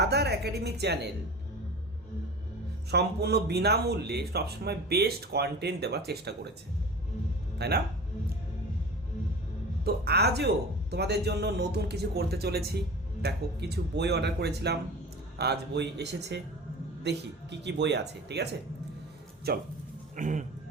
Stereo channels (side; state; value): both; normal; correlation 0.35